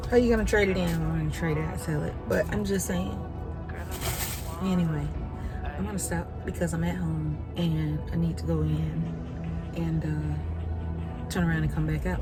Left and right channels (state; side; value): identical; both; correlation 1.00